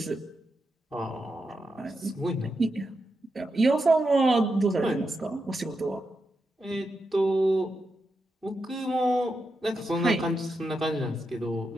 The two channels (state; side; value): normal; both; correlation 0.86